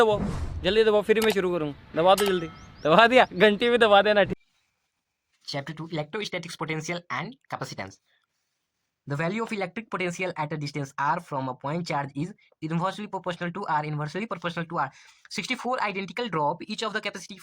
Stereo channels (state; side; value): identical; both; correlation 1.00